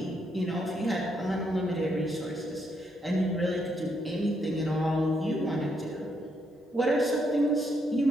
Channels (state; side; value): normal; both; correlation 0.76